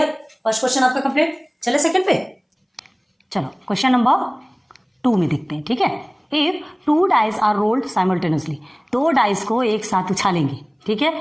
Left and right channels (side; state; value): both; identical; correlation 1.00